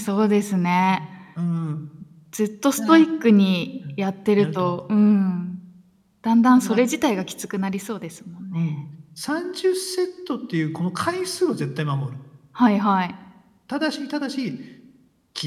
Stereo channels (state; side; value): identical; both; correlation 1.00